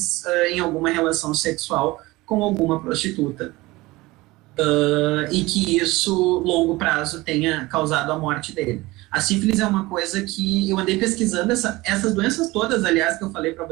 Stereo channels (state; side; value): quieter; left; 20.5 dB